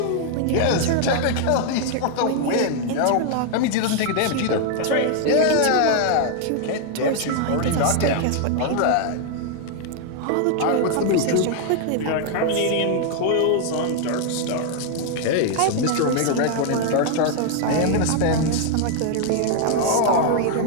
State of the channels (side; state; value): both; different; correlation 0.00